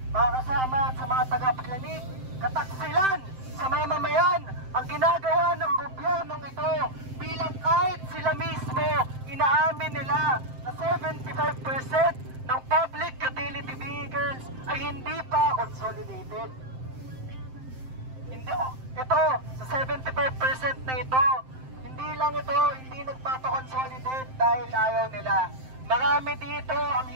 Mga kasama at sa mga tagapakinig, kataksilan sa mamamayan ang ginagawa ng gobyernong ito bilang kahit sila mismo inaamin nila na 75% ng public utility vehicles ay hindi pa consolidated. Ito, sa 75% na ito, hindi lang ito, hindi nagpapakonsolidate dahil ayaw nila. Marami dito ang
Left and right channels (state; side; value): late; left; 7.7 ms